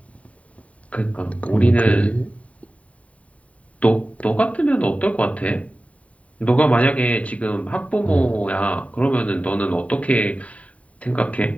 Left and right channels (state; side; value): late; right; 0.067 ms